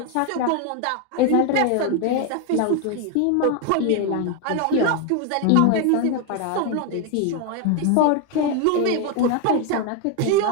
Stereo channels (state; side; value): different; both; correlation 0.01